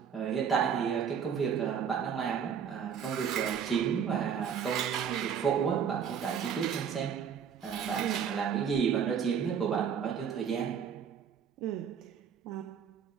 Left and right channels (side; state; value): left; quieter; 7.6 dB